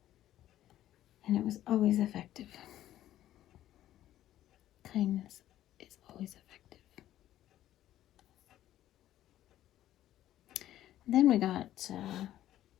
And it was always effective. Kindness is always effective. Then we got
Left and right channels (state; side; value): quieter; right; 13.0 dB